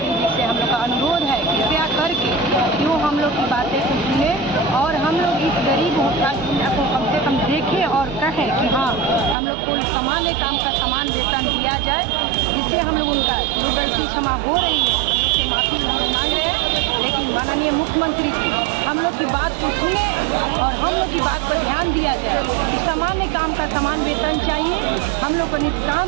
जी से हम लोग का अनुरोध है कृपया करके क्यों हम लोग की बातें को सुने और हम लोग इस गरीब को कम से कम देखें और कहें कि हाँ हम लोग को सामान्य काम का समान वेतन दिया जाए, जिससे हम लोग उनका जो गलती क्षमा हो रही है हम लोग से माफी हम लोग मांग रहे हैं। लेकिन माननीय मुख्यमंत्री जी हम लोग की बात को सुने और हम लोग की बात पर ध्यान दिया जाए कि सामान्य काम का समान वेतन चाहिए। हम लोग को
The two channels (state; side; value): drops out; left; at 9.3 s